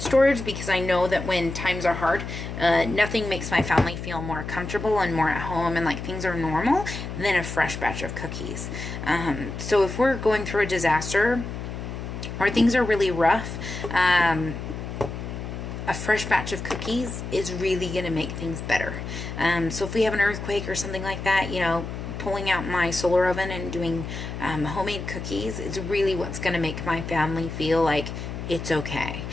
storage because I know that when times are hard, nothing makes my family feel more comfortable and more at home and like things are normal than a fresh batch of cookies. So if we're going through a disaster or things are really rough, a fresh batch of cookies is really going to make things better. So if we have an earthquake or something like that, you know, pulling out my solar oven and doing homemade cookies is really what's going to make my family feel like it's okay.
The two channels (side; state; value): left; noise; hum, 7 dB below the sound